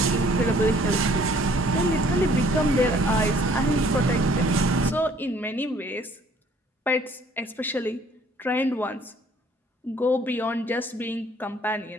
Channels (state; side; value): normal; both; correlation 0.58